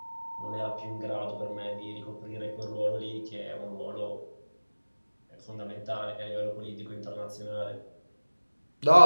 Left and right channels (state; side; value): inverted; both; correlation -1.00